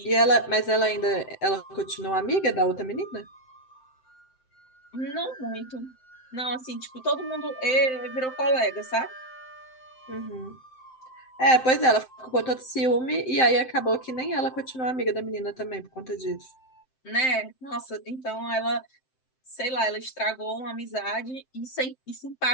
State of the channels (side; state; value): right; late; 7.7 ms